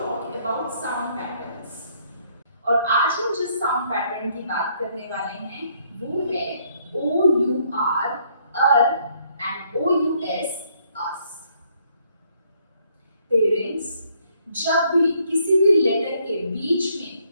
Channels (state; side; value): inverted; both; correlation -0.68